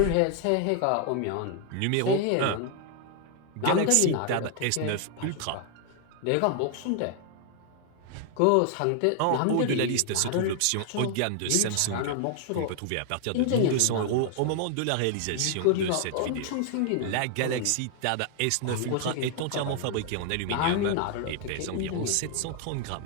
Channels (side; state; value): both; different; correlation 0.00